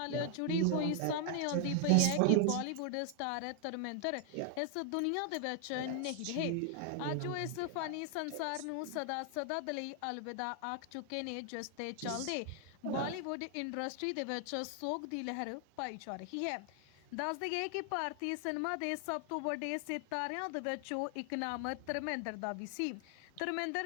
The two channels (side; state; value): both; different; correlation 0.00